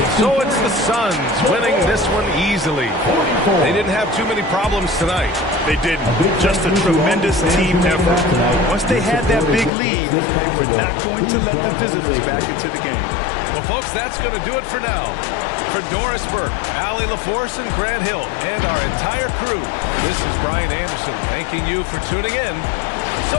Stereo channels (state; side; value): drops out; right; at 9.7 s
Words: So it's the Suns winning this one easily. They didn't have too many problems tonight. They didn't. Just a tremendous team effort. Once they had that big lead, they were not going to let the visitors back into the game. Well, folks, that's going to do it for now. For Doris Burke, Allie LaForce, and Grant Hill, and our entire crew, this is Brian Anderson thanking you for tuning in.